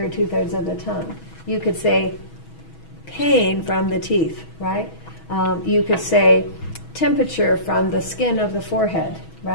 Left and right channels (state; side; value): late; right; 6.2 ms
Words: 2/3 of the tongue. You could say pain from the teeth, right? You could say temperature from the skin of the forehead,